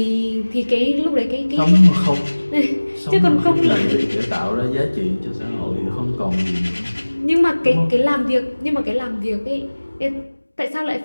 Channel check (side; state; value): both; inverted; correlation -1.00